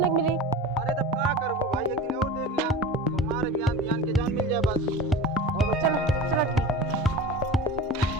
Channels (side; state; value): both; normal; correlation 0.33